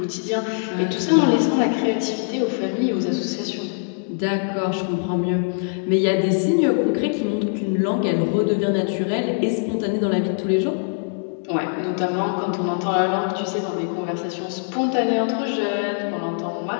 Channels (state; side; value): silent; right; digital silence